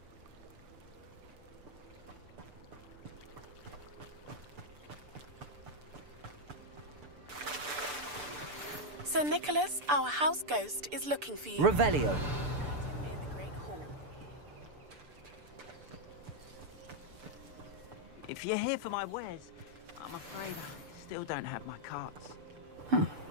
Sir Nicholas, our house ghost, is looking for you. Revelio. If you're here for my wares, I'm afraid I still don't have my carts.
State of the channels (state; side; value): late; left; 6.8 ms